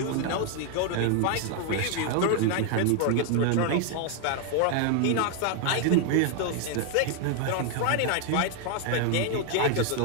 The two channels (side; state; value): both; different; correlation 0.00